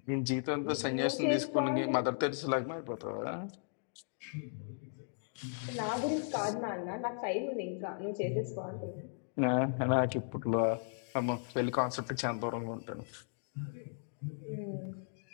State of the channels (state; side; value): silent; right; digital silence